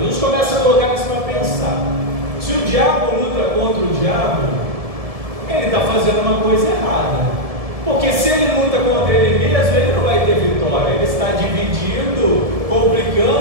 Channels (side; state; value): left; late; 1.7 ms